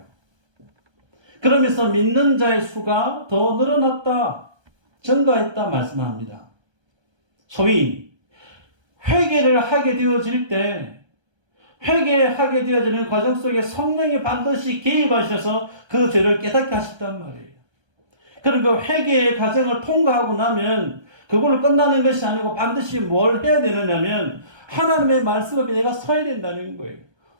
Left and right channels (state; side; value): late; left; 1.3 ms